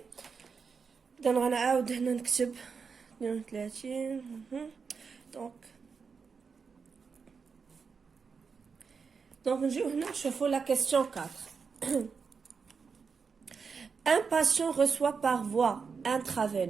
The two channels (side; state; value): left; quieter; 5.5 dB